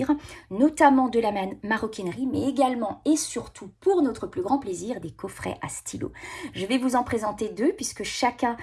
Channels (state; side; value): identical; both; correlation 1.00